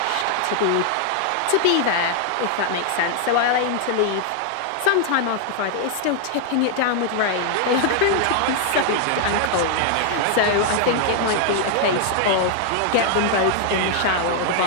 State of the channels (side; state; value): both; different; correlation 0.00